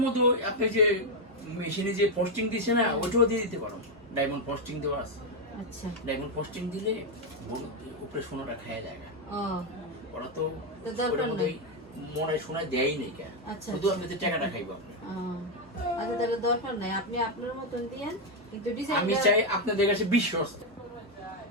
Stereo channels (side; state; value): both; normal; correlation 0.04